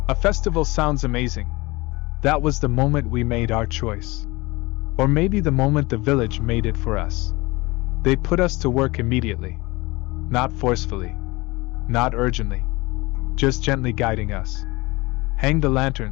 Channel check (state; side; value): quieter; right; 22.8 dB